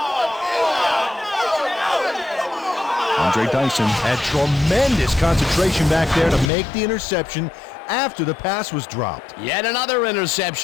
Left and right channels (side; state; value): right; drops out; at 6.5 s